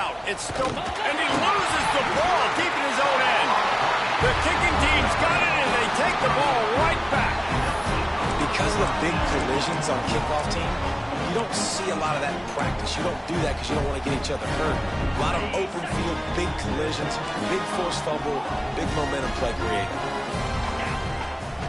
It's still, and he loses the ball deep in his own end. The kicking team's got it, and they take the ball right back. Because of the big collisions on kickoff team, you don't see a lot of that in practice. You don't do that because you don't want to get each other hurt. A lot of open field, big collisions, big forced fumble, big momentum play created.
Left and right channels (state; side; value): identical; both; correlation 1.00